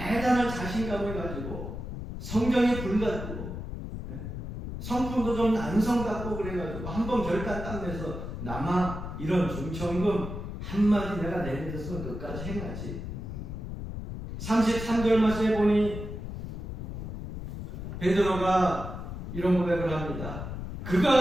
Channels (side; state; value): left; noise; rumble, 7 dB below the sound